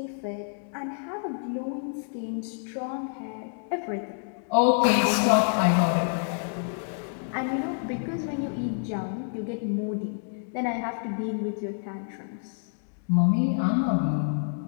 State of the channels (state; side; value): silent; right; digital silence